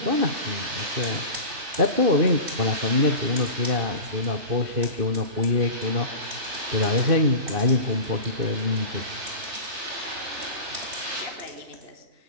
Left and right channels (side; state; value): left; late; 2.6 ms